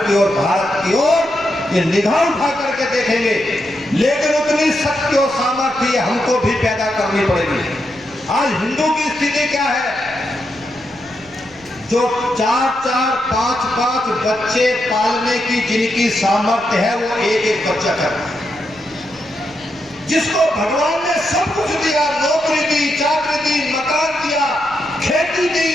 ओर, भारत की ओर ये निगाह उठा करके देखेंगे। लेकिन उतनी शक्ति और सामर्थ्य हमको भी पैदा करनी पड़ेगी। आज हिंदू की स्थिति क्या है? जो 4-4, 5-5 बच्चे पालने की जिनकी सामर्थ्य है वो एक बच्चा करता है। जिसको भगवान ने सब कुछ दिया, नौकरी दी, चाकरी दी, मकान दिया, खेती दी,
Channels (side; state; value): left; noise; rumble, 27 dB below the sound